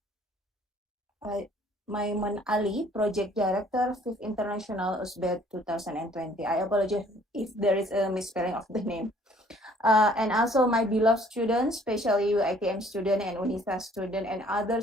Maiman Ali, Project Director, 5th International USBED 2020. I apologize if there is a misspelling of the name. And also my beloved students, especially UITM student and UNISA student and other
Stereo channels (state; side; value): normal; both; correlation 0.58